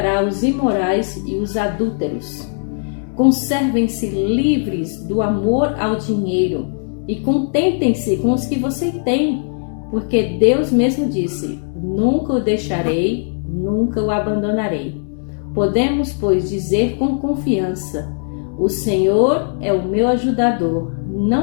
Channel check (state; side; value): silent; right; digital silence